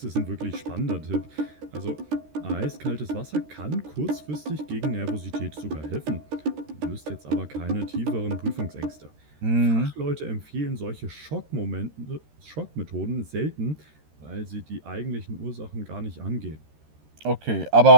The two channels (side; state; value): left; late; 13 ms